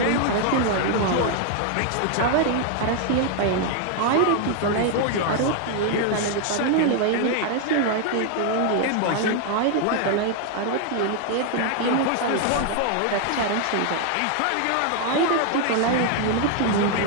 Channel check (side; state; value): both; different; correlation 0.00